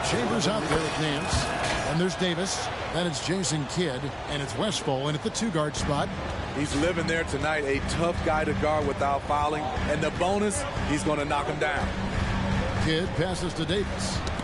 Chambers out there with Nance. And there's Davis. Then it's Jason Kidd. And it's Westphal in at the 2-guard spot. He's living there tonight, a tough guy to guard without fouling. And the bonus, he's going to knock him down. Kidd passes to Davis.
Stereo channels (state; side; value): identical; both; correlation 1.00